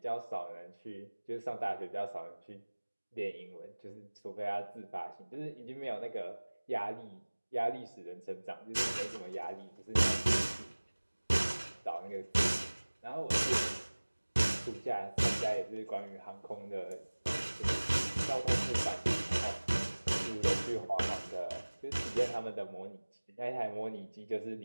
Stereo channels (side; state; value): both; inverted; correlation -1.00